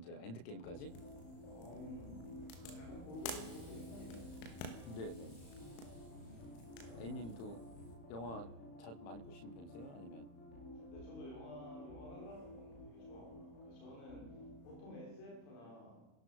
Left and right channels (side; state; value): right; late; 35 ms